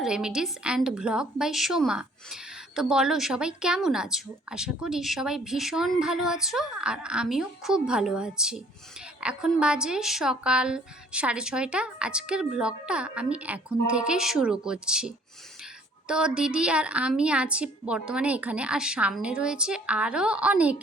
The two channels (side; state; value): both; normal; correlation 0.57